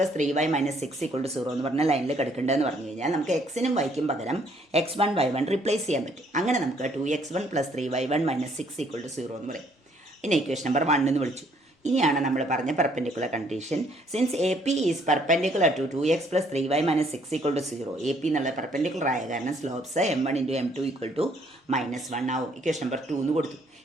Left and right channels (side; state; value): both; normal; correlation 0.65